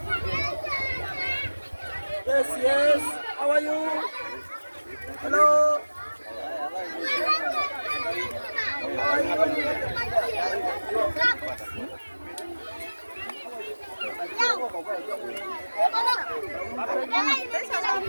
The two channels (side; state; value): both; inverted; correlation -1.00